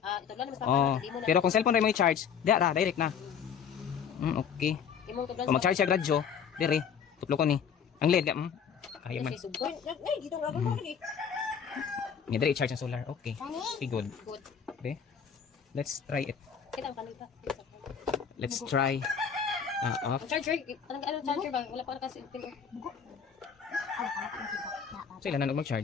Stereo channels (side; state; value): right; quieter; 7.2 dB